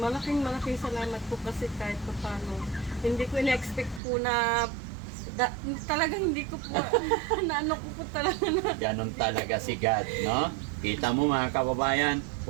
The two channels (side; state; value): left; drops out; at 4.0 s